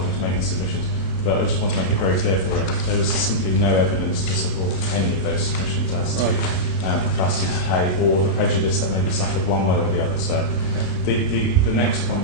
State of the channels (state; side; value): late; right; 32 ms